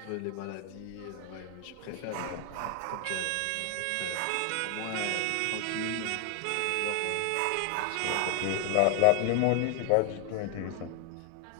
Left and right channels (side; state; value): both; different; correlation 0.00